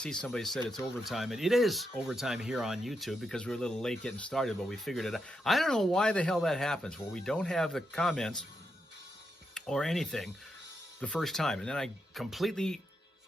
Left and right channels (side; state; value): both; normal; correlation 0.84